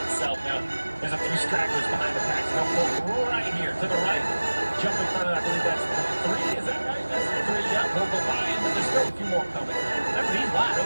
itself. Now, there's a few stragglers behind the pack. So they'll go right here to the right. Jump in front of that. I believe that's the 3. Is that right? That's the 3. Yeah, we'll go by him, but there's still a few more coming. Remember, he's wide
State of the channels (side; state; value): both; inverted; correlation -1.00